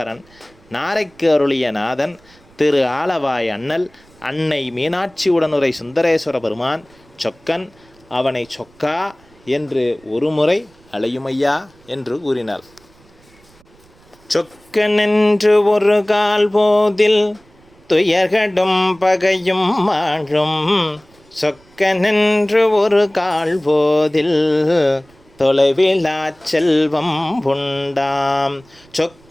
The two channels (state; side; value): noise; right; rumble, 29 dB below the sound